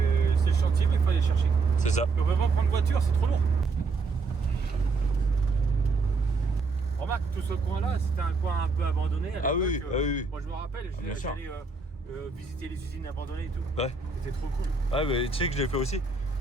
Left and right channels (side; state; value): left; quieter; 4.1 dB